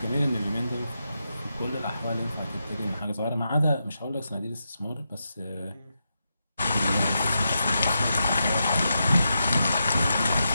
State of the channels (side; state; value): both; inverted; correlation -0.86